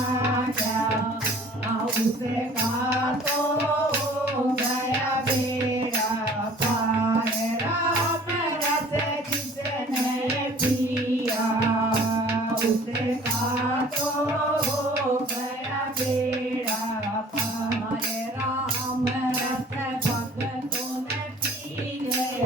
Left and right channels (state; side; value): normal; both; correlation 0.50